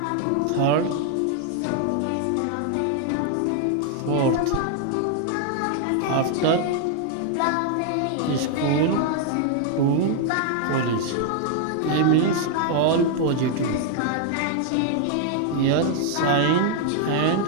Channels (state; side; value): different; both; correlation 0.00